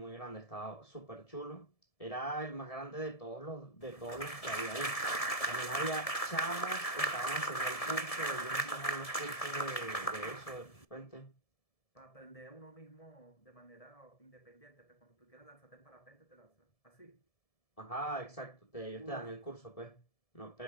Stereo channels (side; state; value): right; late; 1.7 ms